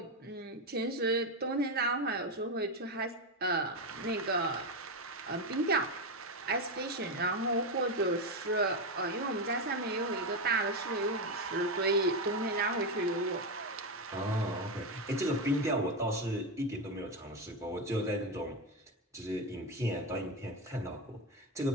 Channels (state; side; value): normal; both; correlation 0.11